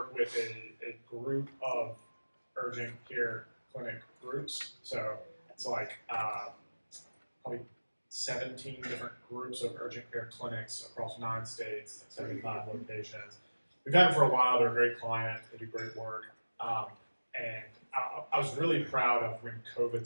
with a group of urgent care clinic groups. So it's like probably 17 different groups of urgent care clinics across 9 states, 75 locations. We've had them for a while. They're a great client. They do great work. And I was really proud of when COVID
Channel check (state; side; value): inverted; both; correlation -1.00